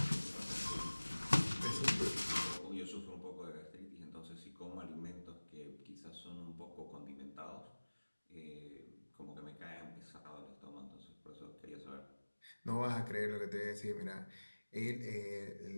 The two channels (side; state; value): both; inverted; correlation -1.00